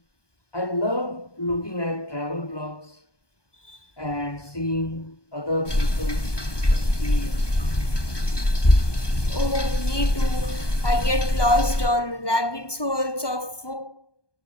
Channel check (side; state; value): right; late; 1.2 ms